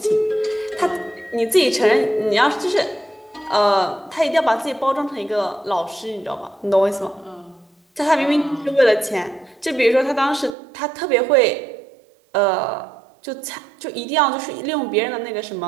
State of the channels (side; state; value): left; drops out; at 10.6 s